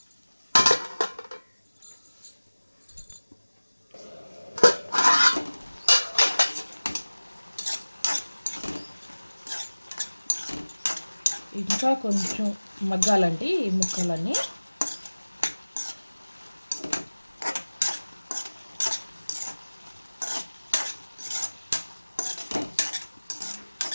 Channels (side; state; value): both; inverted; correlation -1.00